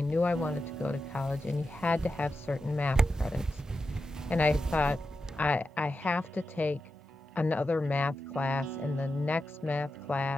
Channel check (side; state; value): both; normal; correlation 0.90